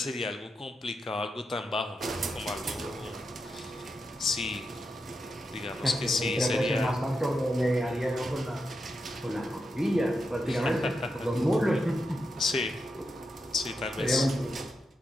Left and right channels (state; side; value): normal; both; correlation 0.86